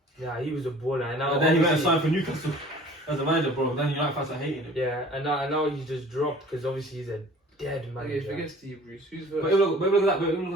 Yeah, he was a baller. And now And then he went and obviously- signed for Newcastle as a manager, bro. Then United fans are hating him. Yeah, and now he's just dropped because obviously he's a dead Okay, manager. forget Steve Bruce. Who's But first? look at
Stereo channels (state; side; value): normal; both; correlation 0.48